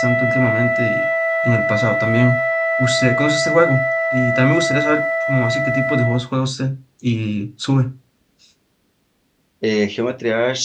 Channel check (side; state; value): both; identical; correlation 1.00